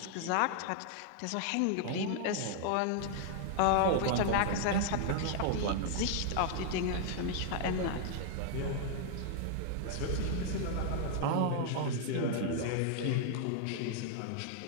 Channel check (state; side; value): different; both; correlation 0.00